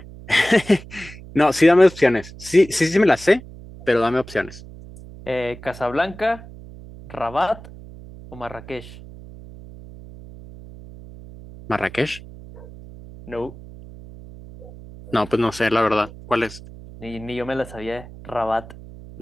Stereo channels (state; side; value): noise; right; hum, 17 dB below the sound